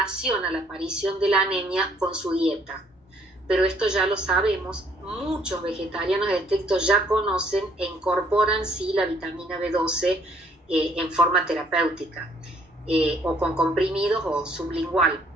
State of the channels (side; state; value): both; normal; correlation 0.63